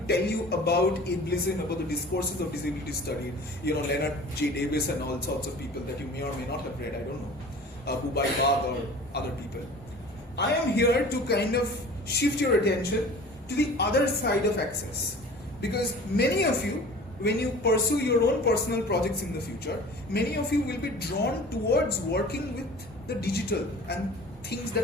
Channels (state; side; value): normal; both; correlation 0.43